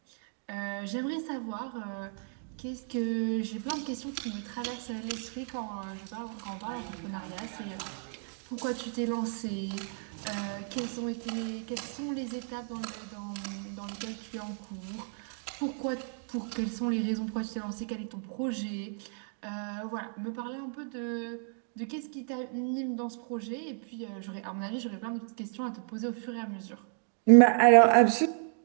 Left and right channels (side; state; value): left; silent; 56 dB below the other